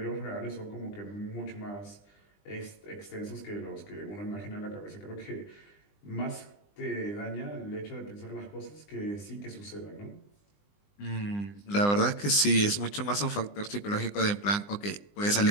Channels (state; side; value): late; right; 20 ms